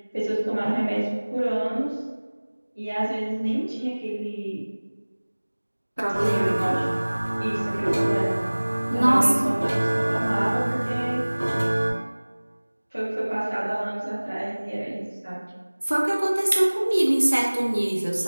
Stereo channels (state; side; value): inverted; both; correlation -1.00